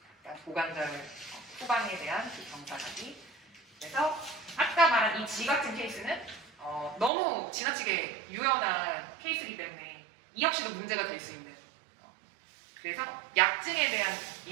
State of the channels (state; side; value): drops out; left; at 7.1 s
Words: 그러니까 고관절 후방에 대한 그 경사각이. 그래서 아까 말한 이 G 같은 케이스는 너무 지나치게 유연한 케이스이기 때문에 이 역시도 문제가 될 수 있는. 그래서 약증에 대한